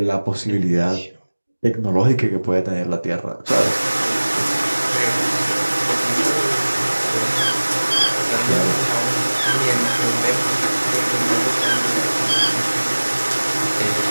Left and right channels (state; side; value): inverted; both; correlation -1.00